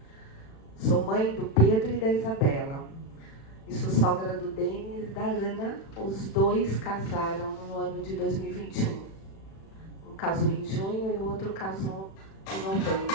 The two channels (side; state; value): right; late; 36 ms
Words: sou mãe do Pedro e da Isabela, e sou sogra do Denis e da Ana. Os dois casaram no ano de 2021. Um casou em junho e o outro casou em novembro.